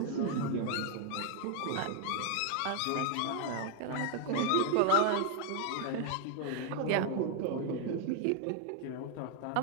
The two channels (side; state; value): both; different; correlation 0.00